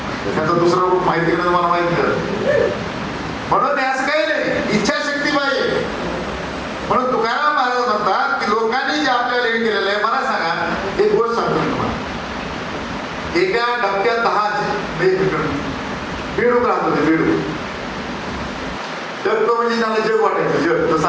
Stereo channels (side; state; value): both; identical; correlation 1.00